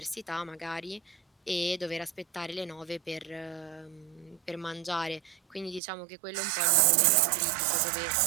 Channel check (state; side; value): drops out; left; at 5.8 s